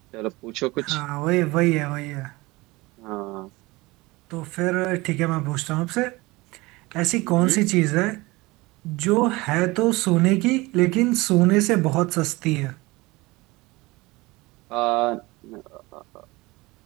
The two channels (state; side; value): quieter; left; 22.1 dB